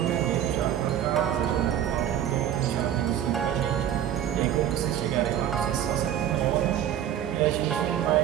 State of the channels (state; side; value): quieter; left; 10.6 dB